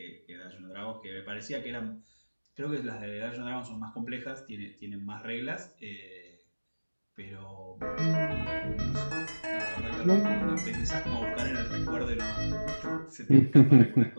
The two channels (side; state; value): both; inverted; correlation -1.00